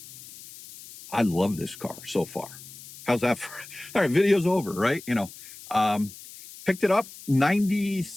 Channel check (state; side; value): noise; left; hiss, 17 dB below the sound